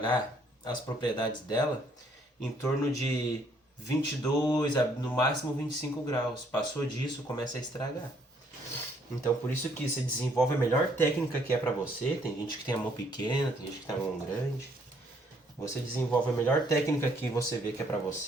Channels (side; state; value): both; normal; correlation 0.66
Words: as propriedades dela, em torno de 22 a no máximo 25 graus. Passou disso, começa a estragar. Então por isso que você desenvolve a melhor técnica que é para você. Tem gente que tem a mão pequena, tem gente que tem a mão grande. Você desenvolve a melhor técnica que você vê que é para